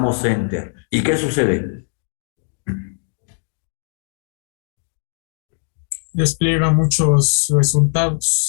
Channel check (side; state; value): right; silent; digital silence